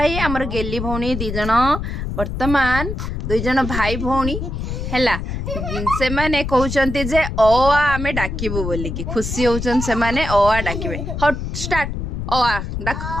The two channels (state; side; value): noise; left; rumble, 5 dB below the sound